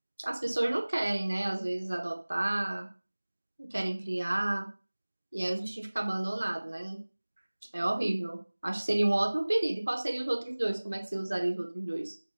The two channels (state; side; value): inverted; both; correlation -1.00